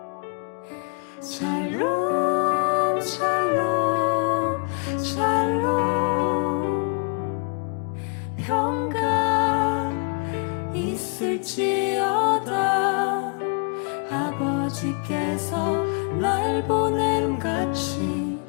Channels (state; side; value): quieter; right; 39.6 dB